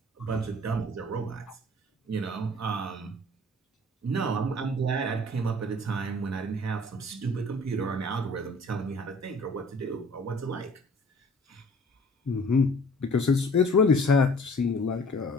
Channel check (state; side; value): normal; both; correlation 0.51